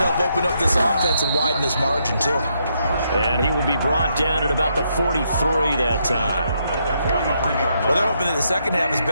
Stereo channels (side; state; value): both; inverted; correlation -0.77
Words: open up this offense and widen this margin, too. And he will be brought down at about the 43 that time. Well, they're hoping that the second half is